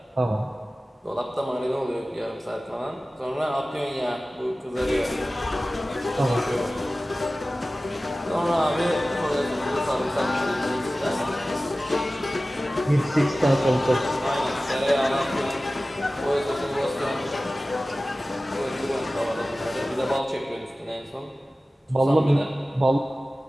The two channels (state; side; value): normal; both; correlation 0.96